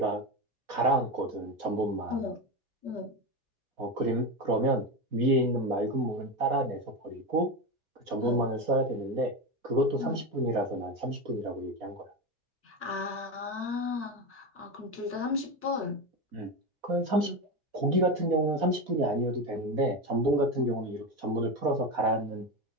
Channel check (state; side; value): late; left; 4.2 ms